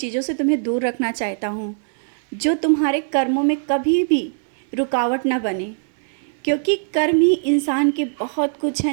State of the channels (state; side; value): silent; left; digital silence